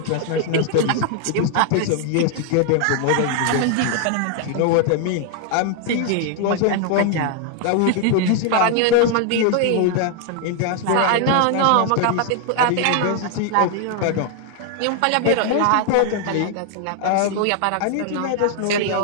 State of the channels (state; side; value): different; both; correlation 0.00